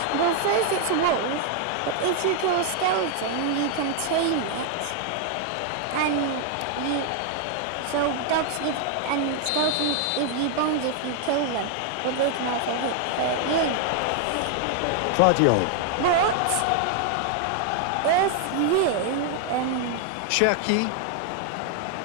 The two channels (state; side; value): different; both; correlation 0.00